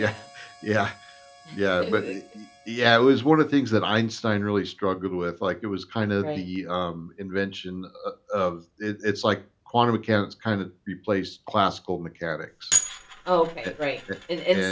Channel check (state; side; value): identical; both; correlation 1.00